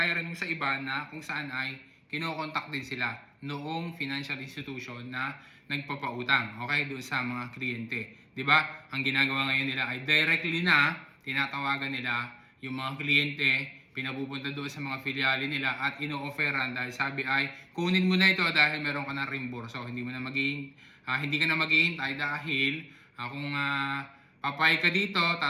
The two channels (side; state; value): both; identical; correlation 1.00